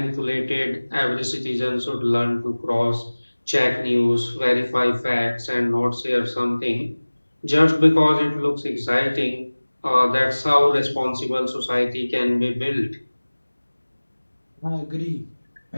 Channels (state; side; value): inverted; both; correlation -1.00